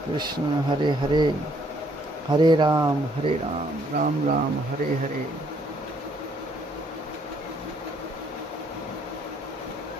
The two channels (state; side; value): normal; both; correlation 0.67